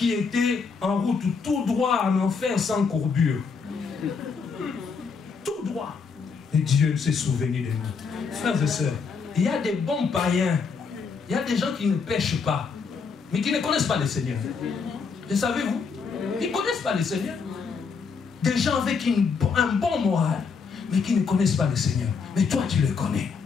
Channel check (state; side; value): quieter; right; 5.4 dB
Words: étaient en route tout droit en enfer sans courbure. Tout droit. Et Dieu s'est souvenu de nous. Frères et sœurs, il y a des bons païens, il y a des gens qui ne pêchent pas, mais qui ne connaissent pas le Seigneur. Le savez-vous? Ils ne connaissent pas le Seigneur. Des gens avec un bon moral, mais qui ne connaissent pas le Seigneur. Mais toi, tu le connais.